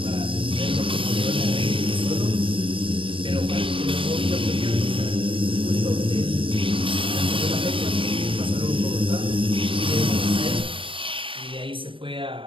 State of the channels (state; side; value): late; left; 0.25 ms